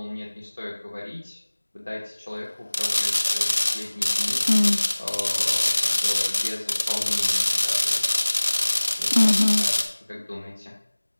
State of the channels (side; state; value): both; inverted; correlation -1.00